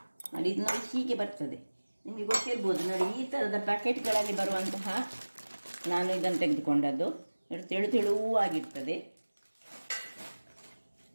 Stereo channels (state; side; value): inverted; both; correlation -1.00